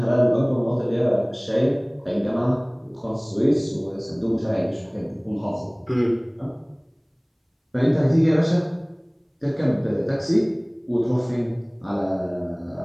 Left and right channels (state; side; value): identical; both; correlation 1.00